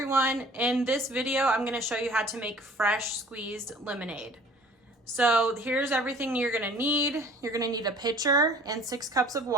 in this video I'm going to show you how to make fresh squeezed lemonade. So here's everything you're going to need. You're going to need a pitcher and 6 cups of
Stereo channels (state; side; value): normal; both; correlation 0.50